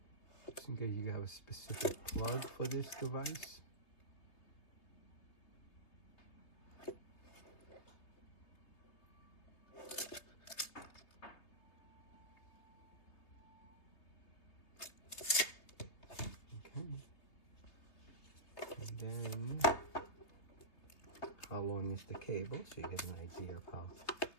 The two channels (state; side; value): late; right; 3.3 ms